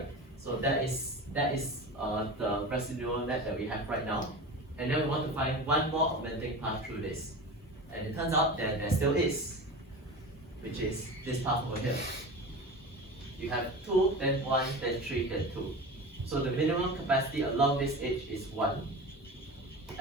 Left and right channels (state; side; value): normal; both; correlation 0.31